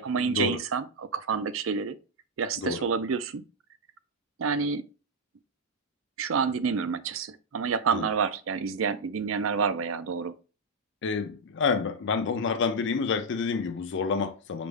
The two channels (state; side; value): normal; both; correlation -0.02